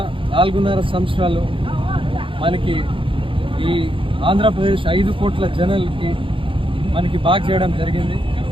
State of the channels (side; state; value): left; late; 0.25 ms